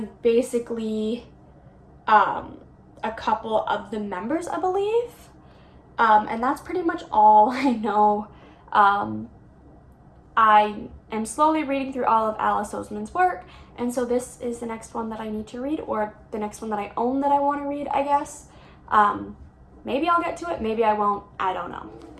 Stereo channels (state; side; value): identical; both; correlation 1.00